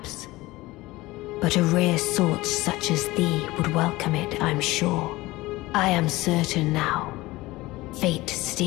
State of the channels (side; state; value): right; quieter; 19.6 dB